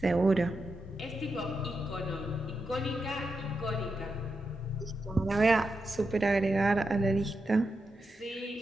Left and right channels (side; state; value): both; normal; correlation 0.87